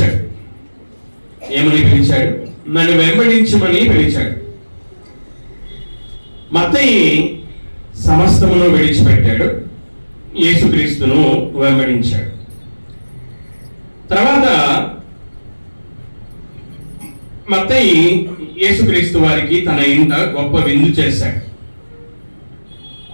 ఏమని పిలిచాడు? నన్ను వెంబడించమని పిలిచాడు. మత్తయి సమస్తమును విడిచిపెట్టాడు, యేసుక్రీస్తును వెంబడించాడు. తర్వాత మత్తయి యేసుక్రీస్తు వారికి తన ఇంట గొప్ప విందు చేశాడు.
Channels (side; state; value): both; inverted; correlation -1.00